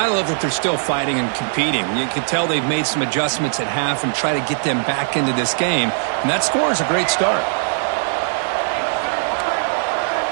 love that they're still fighting and competing. You can tell they've made some adjustments at half and try to get them back into this game. And that score is a great start.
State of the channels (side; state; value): left; silent; 62 dB below the other